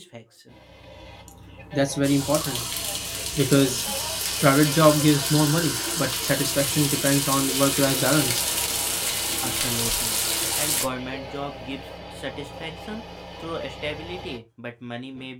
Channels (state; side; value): identical; both; correlation 1.00